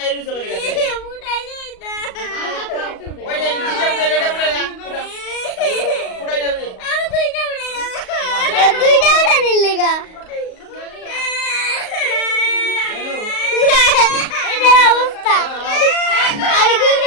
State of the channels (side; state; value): right; late; 38 ms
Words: হইছো গেলে গেছে আমি মাত্র একটা উঠাইছি ওই যে ফুটাও ফুটাই যাবে দুইটা